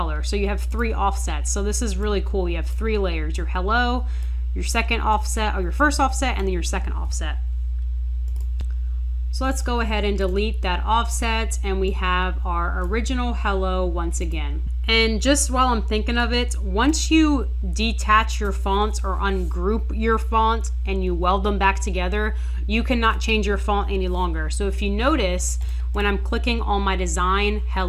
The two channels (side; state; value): both; identical; correlation 1.00